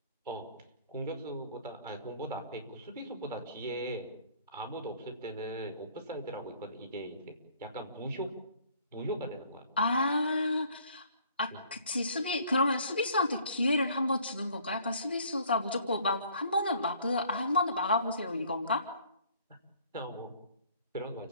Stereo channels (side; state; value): both; inverted; correlation -0.57